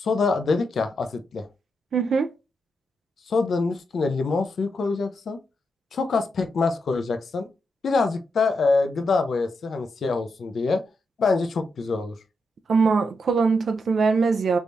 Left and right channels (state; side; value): normal; both; correlation 0.83